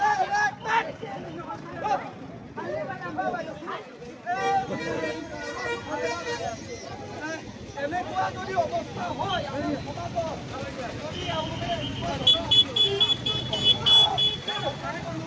এনেকুৱা যদি অৱস্থা হয়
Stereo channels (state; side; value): identical; both; correlation 1.00